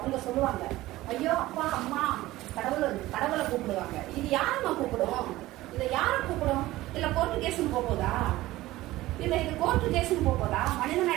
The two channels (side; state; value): left; quieter; 17.2 dB